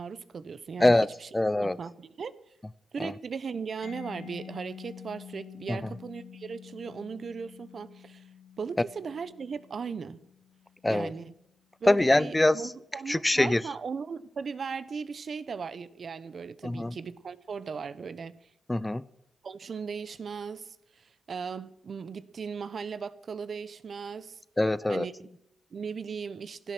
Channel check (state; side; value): normal; both; correlation 0.95